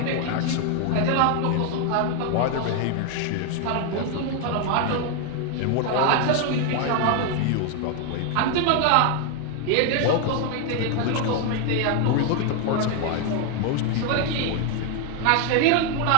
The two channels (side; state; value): both; different; correlation 0.01